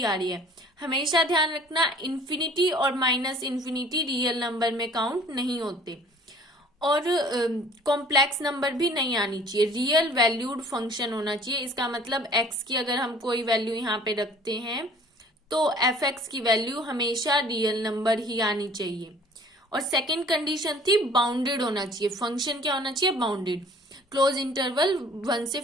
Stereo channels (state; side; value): normal; both; correlation 0.51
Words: आ रही है। हमेशा ध्यान रखना, इन्फिनिटी और माइनस इन्फिनिटी रियल नंबर में काउंट नहीं होते, और कॉम्प्लेक्स नंबर भी नहीं आनी चाहिए। रियल वैल्यूड फंक्शन होना चाहिए। इसका मतलब x की अगर हम कोई वैल्यू यहाँ पे रखते हैं तो एफ एक्स की वैल्यू हमेशा रियल नंबर ही आनी चाहिए। और सेकेंड कंडीशन थी बाउंडेड होना चाहिए। फंक्शन क्या होना चाहिए, बाउंडेड, क्लोज इंटरवल 1 से